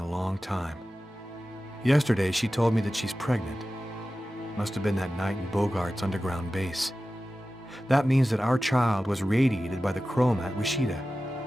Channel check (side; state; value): both; normal; correlation 0.95